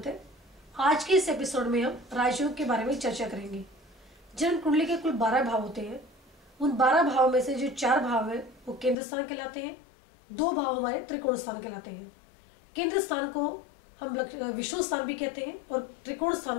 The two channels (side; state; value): right; drops out; at 9.0 s